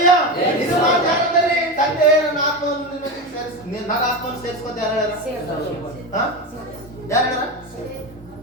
ಇದು ಮಾತು ಯಾರಂದ್ರೆ ತಂದೆ ನನ್ನ ಆತ್ಮವನ್ನು ನಿನಗೆ ಸೇರಿಸಿ ನನ್ನ ಆತ್ಮವನ್ನು ಸೇರಿಸಿಕೊತ ಯಾರು ಹೇಳ್ಯಾರ? ಯಾರು ಹೇಳ್ಯಾರ?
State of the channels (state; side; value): normal; both; correlation 0.19